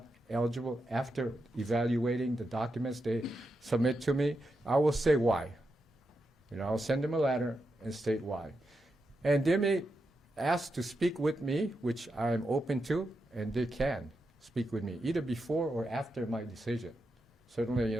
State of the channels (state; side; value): normal; both; correlation 0.86